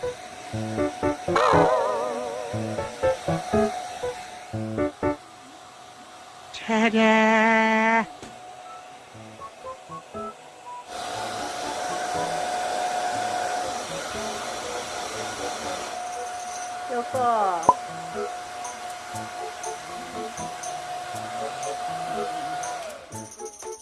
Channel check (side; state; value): both; identical; correlation 1.00